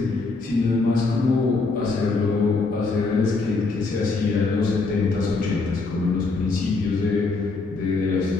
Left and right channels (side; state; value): right; quieter; 3.9 dB